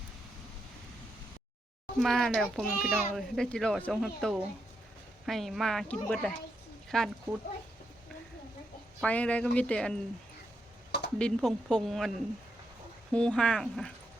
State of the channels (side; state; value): both; normal; correlation 0.82